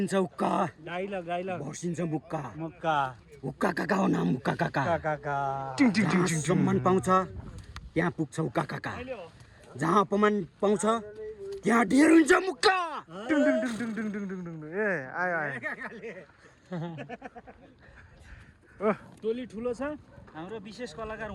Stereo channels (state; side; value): identical; both; correlation 1.00